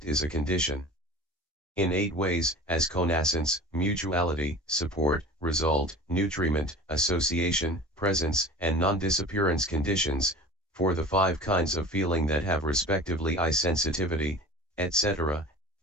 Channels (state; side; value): normal; both; correlation 0.39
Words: is a condition in 8 ways, as connascence, mutuality, support, result, nutriment, association, presence, and non-disappearance conditions, for the 5 kinds of feeling that have respectively eye sensitivity, etc.,